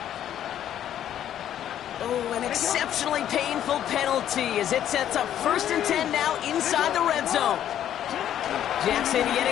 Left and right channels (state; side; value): quieter; right; 10.8 dB